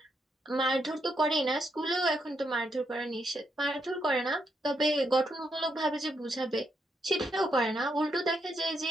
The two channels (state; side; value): normal; both; correlation 0.79